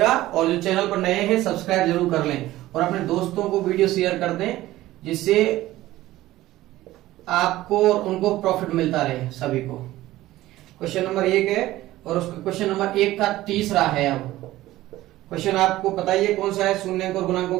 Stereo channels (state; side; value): quieter; left; 16.1 dB